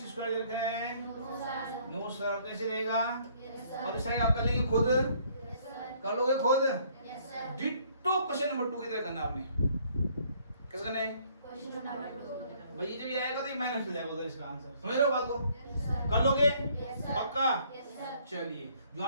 स्क्वायर रखें 9 सर, कैसे रहेगा? और इस साइड आप कर लेंगे खुद, कर लोगे खुद। डिट्टो क्वेश्चन नंबर 2 की तरह करना आपने, कैसे करना है क्वेश्चन नंबर 2? भाई जब ये आएगा तो ये माइनस हो जाएगा उधर इसका आंसर, समझ रहे हो बात को? कर लोगे पक्का? चलिए जो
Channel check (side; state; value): both; inverted; correlation -0.63